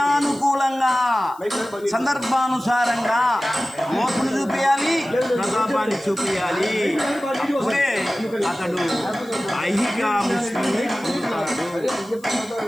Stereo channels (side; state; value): left; noise; hiss, 26 dB below the sound